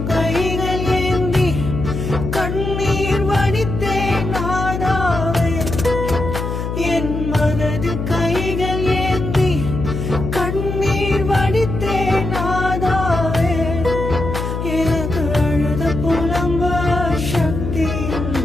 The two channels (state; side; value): noise; left; hum, 4 dB below the sound